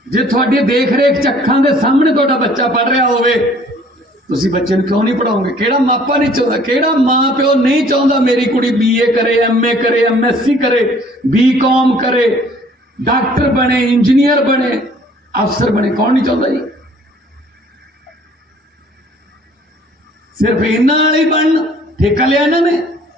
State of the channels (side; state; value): both; normal; correlation 0.56